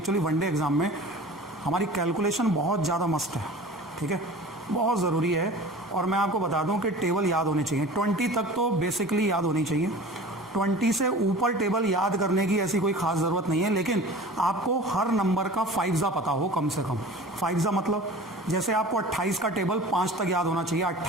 वनडे एग्जाम में हमारी कैलकुलेशन बहुत ज़्यादा मस्त है, ठीक है, बहुत ज़रूरी है। और मैं आपको बता दूं कि टेबल याद होने चाहिए। 20 तक तो बेसिकली याद होनी चाहिए, 20 से ऊपर टेबल याद करने की ऐसी कोई ख़ास ज़रूरत नहीं है, लेकिन आपको हर नंबर का 5 पता हो कम से कम। 5 मतलब जैसे आपको 28 का टेबल 5 तक याद होना चाहिए।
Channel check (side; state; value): both; normal; correlation 0.40